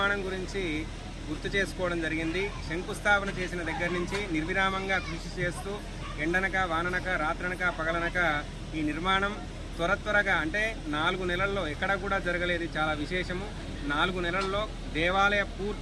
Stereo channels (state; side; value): identical; both; correlation 1.00